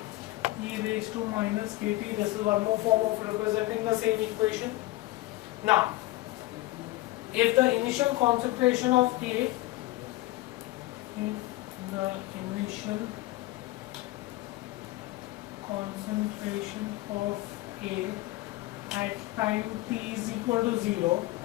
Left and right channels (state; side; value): quieter; right; 18.6 dB